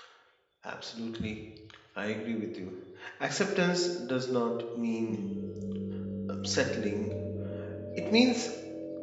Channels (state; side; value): identical; both; correlation 1.00